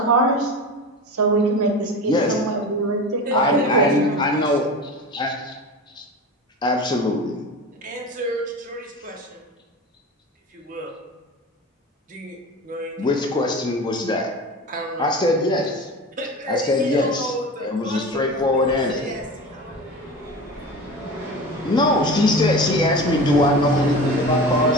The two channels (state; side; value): normal; both; correlation 0.31